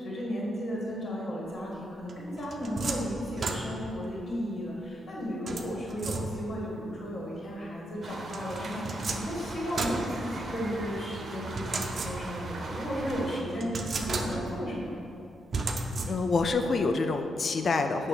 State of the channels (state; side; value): normal; both; correlation 0.80